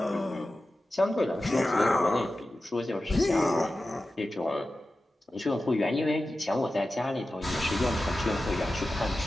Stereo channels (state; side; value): normal; both; correlation 0.94